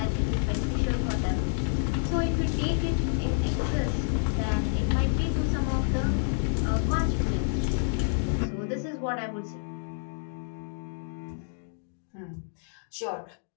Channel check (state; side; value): silent; right; digital silence